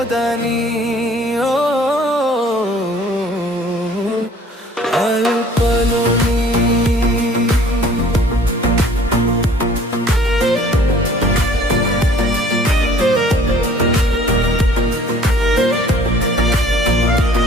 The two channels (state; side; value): normal; both; correlation 0.53